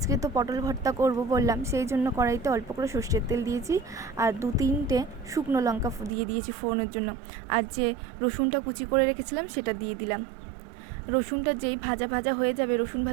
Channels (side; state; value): left; drops out; at 6.1 s